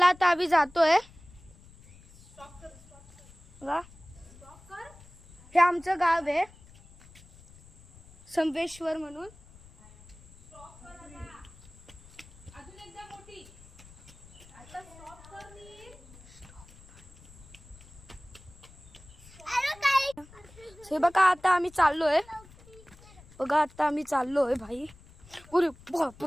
आता आम्ही जातोय. हे आमचं गाव आहे, संवेश्वर म्हणून. हे बघा, आता आम्ही चाललोय. बघा, आता आम्ही चाललोय भाई. अरे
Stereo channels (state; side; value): noise; left; rumble, 23 dB below the sound